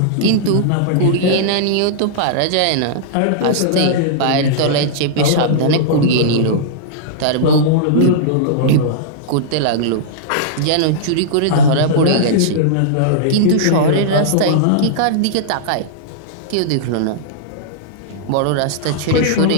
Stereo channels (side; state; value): both; different; correlation -0.02